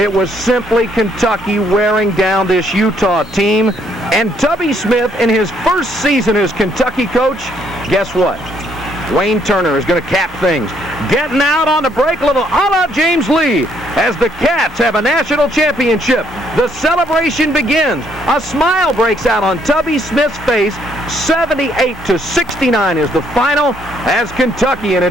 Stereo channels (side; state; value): both; normal; correlation 0.69